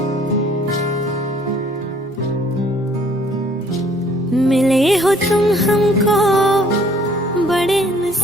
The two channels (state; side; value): normal; both; correlation 0.59